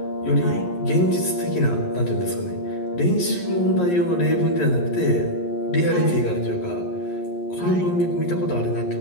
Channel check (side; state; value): right; late; 11 ms